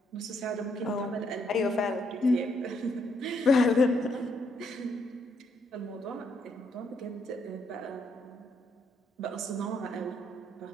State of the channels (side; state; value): both; normal; correlation 0.74